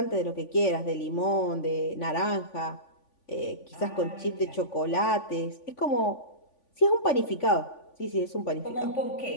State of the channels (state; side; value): late; right; 3.5 ms